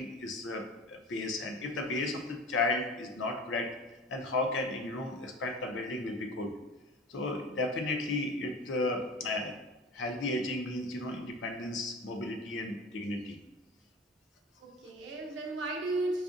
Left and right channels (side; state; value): both; normal; correlation 0.37